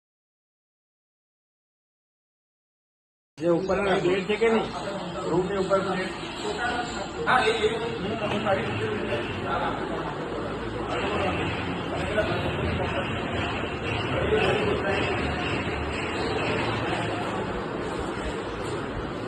જે ઉપર પ્લેટ છે કે નહીં રૂમ ની ઉપર પ્લેટ હા એ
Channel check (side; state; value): both; identical; correlation 1.00